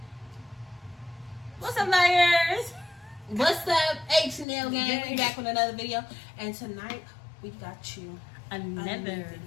What's up, liars? What's up, H&L gang? We back with another video, and tonight we got you Another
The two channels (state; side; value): drops out; right; at 4.5 s